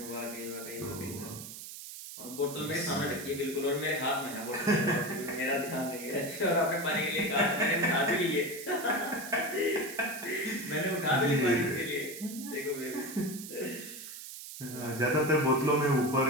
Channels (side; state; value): right; noise; hiss, 11 dB below the sound